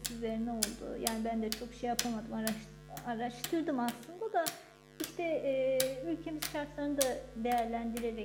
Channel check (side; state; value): both; identical; correlation 1.00